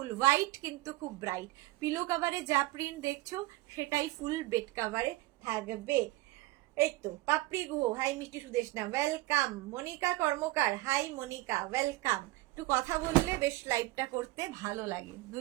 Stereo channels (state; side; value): quieter; left; 19.6 dB